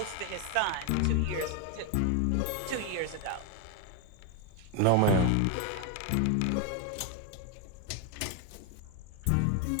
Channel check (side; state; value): both; different; correlation 0.01